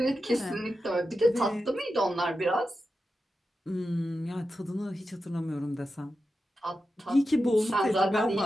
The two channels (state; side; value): normal; both; correlation 0.90